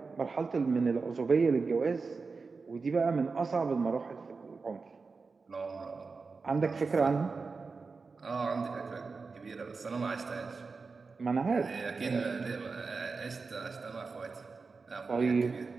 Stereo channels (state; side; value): quieter; left; 4.5 dB